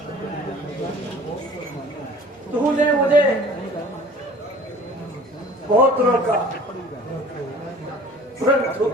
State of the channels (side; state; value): both; normal; correlation 0.47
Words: तूने मुझे बहुत रोका, परंतु